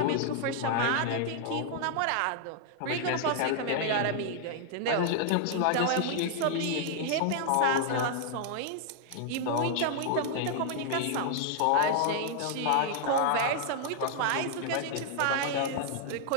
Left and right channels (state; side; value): different; both; correlation 0.00